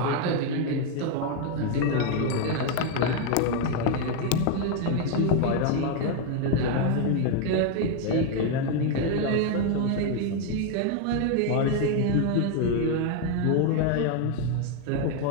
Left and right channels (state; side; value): different; both; correlation 0.01